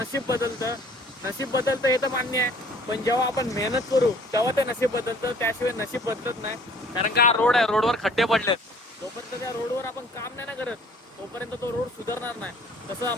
बदलतं. नशीब बदलतं हे तर मान्य आहे, पण जेव्हा आपण मेहनत करू तेव्हा ते नशीब बदलतं. त्याशिवाय नशीब बदलत नाही. कारण का रोड आहे, रोडवर खड्डे पडलेत. जोपर्यंत त्या रोडवर आपण काम नाही ना करत तोपर्यंत तो रोड सुधारणार नाही. तसं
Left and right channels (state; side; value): normal; both; correlation 0.54